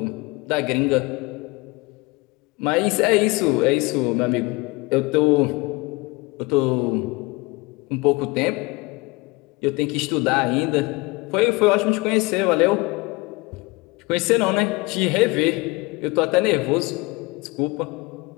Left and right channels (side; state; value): right; quieter; 24.6 dB